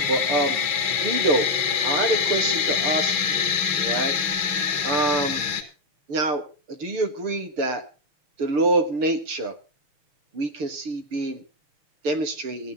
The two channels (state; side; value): late; left; 6.1 ms